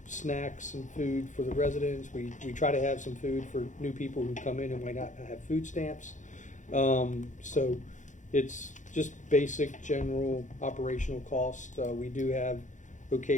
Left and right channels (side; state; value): right; late; 0.36 ms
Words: snacks and food for the residents. We try to have some food for new people who come in and might not have food stamps. So it's just basic general operational cost. We do have